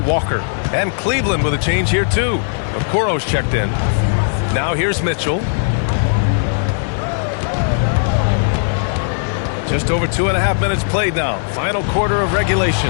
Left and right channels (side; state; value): right; silent; digital silence